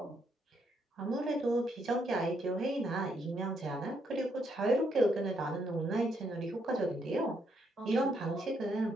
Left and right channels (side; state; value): both; normal; correlation 0.75